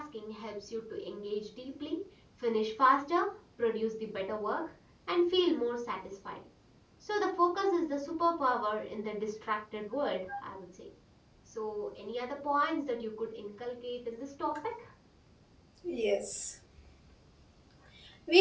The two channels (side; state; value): both; identical; correlation 1.00